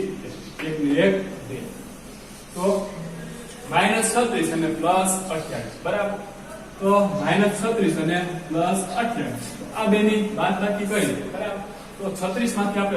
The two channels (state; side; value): identical; both; correlation 1.00